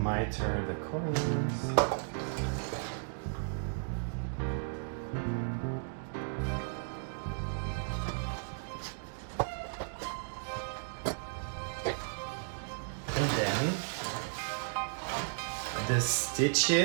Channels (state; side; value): silent; left; digital silence